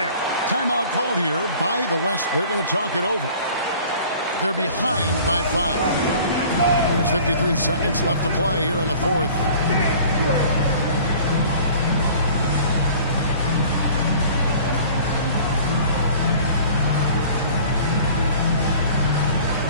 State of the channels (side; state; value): both; inverted; correlation -0.48